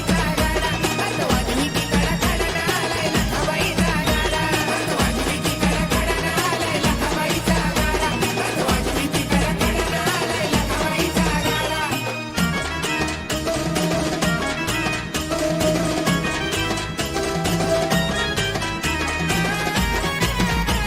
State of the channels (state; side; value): identical; both; correlation 1.00